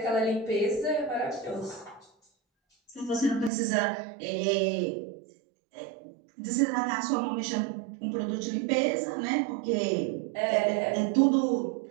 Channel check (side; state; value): left; drops out; at 3.5 s